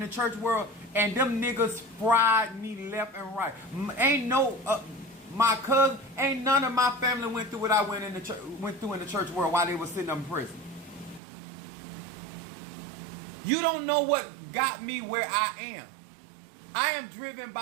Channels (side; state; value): left; drops out; at 11.2 s